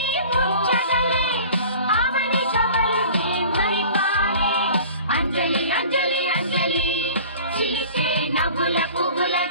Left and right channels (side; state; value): both; inverted; correlation -0.43